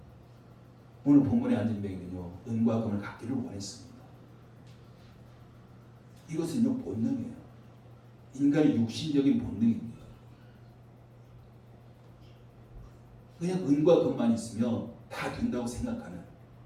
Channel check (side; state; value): both; identical; correlation 1.00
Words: 오늘 본문의 안진뱅이는요, 은과 금을 갖기를 원했습니다. 이것은요, 본능이에요. 인간의 육신적인 본능입니다. 그냥 은과 금만 있으면 다 된다고 생각하는